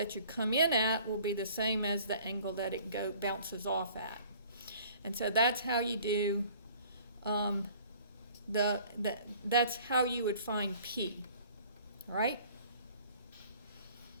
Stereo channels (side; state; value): both; inverted; correlation -0.52